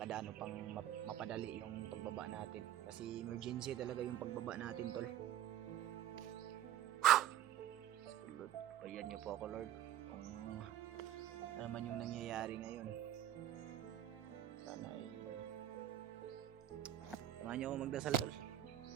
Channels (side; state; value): left; quieter; 11.8 dB